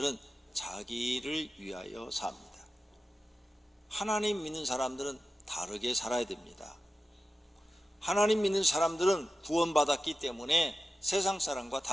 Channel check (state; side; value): normal; both; correlation 0.94